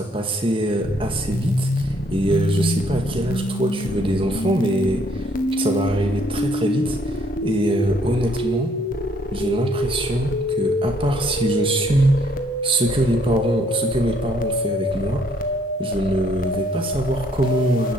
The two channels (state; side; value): normal; both; correlation 0.65